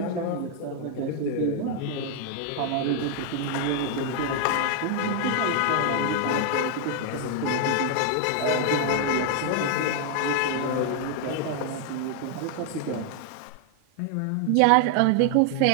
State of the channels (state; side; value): different; both; correlation 0.00